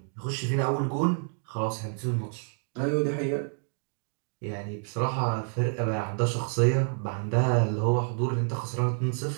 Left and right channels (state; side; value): silent; left; 55 dB below the other